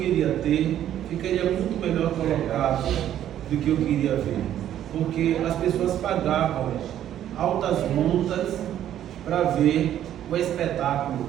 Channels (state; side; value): quieter; left; 11.3 dB